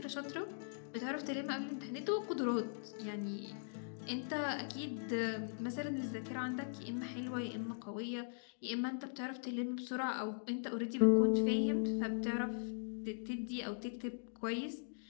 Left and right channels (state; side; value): silent; right; digital silence